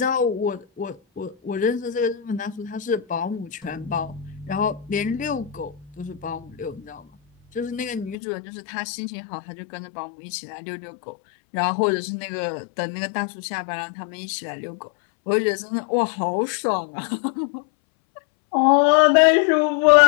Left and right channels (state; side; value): drops out; right; at 8.2 s